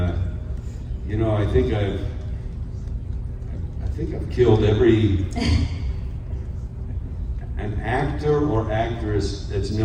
you know, I think I've killed every an actor or actress that's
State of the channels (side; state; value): both; identical; correlation 1.00